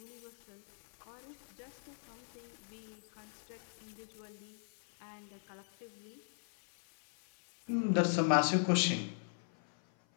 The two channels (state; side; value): silent; right; 52 dB below the other